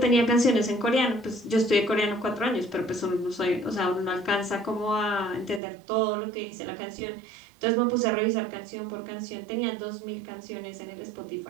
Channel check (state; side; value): drops out; left; at 5.6 s